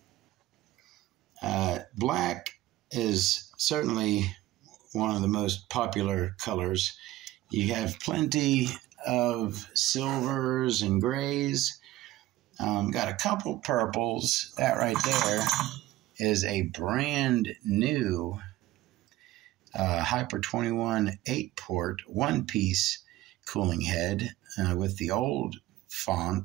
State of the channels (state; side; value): quieter; left; 16.1 dB